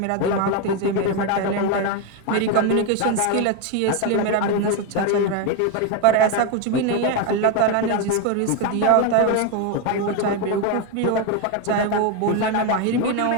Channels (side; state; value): both; different; correlation 0.02